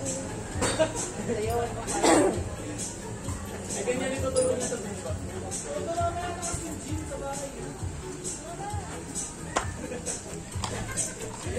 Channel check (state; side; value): identical; both; correlation 1.00